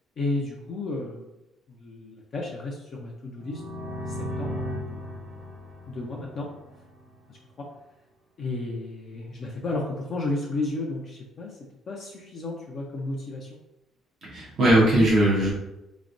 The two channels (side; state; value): both; normal; correlation 0.68